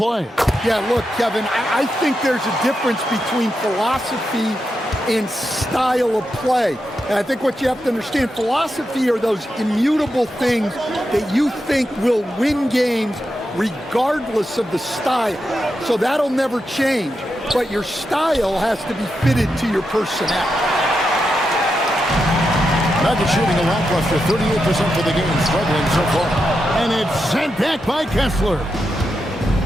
Yeah, look, Kevin, I think there's a difference between philosophy and style of play. And I think what you have to understand, philosophy are those immutable things that you think will win games regardless of the style. So that'll never change. But your style has to be fitted to your personnel. Nuggets shooting a lackluster 38% for the game, struggling so far. And it's sent back by Kessler.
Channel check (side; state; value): both; normal; correlation 0.86